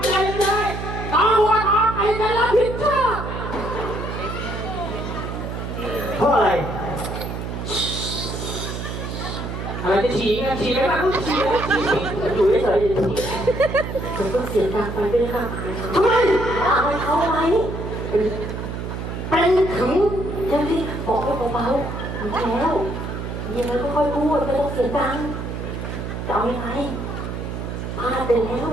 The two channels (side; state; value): right; noise; hum, 6 dB below the sound